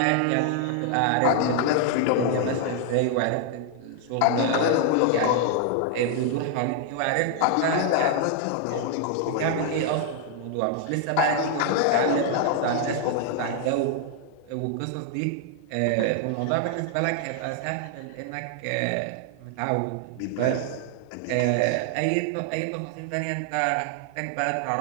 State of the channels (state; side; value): different; both; correlation 0.00